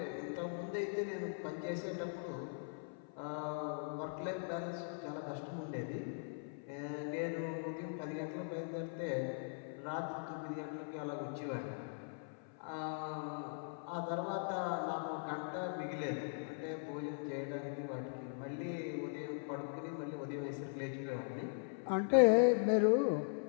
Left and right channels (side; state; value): right; silent; 51 dB below the other